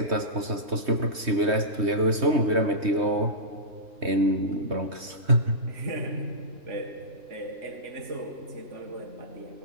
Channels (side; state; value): left; late; 3.2 ms